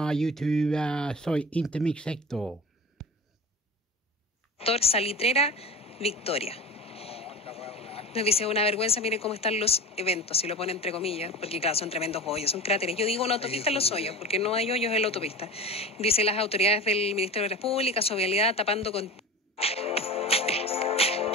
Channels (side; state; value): both; normal; correlation 0.32